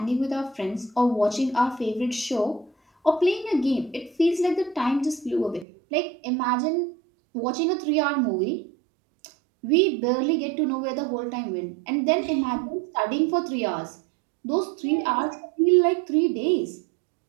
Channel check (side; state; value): left; drops out; at 5.7 s